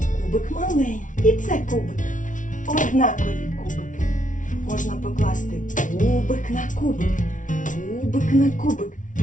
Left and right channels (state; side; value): late; right; 0.37 ms